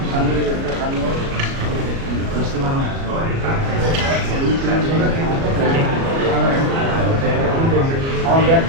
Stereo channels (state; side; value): late; left; 37 ms